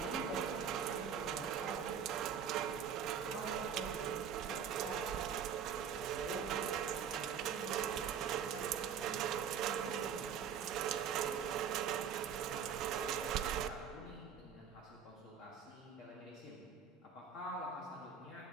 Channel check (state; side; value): quieter; left; 7.6 dB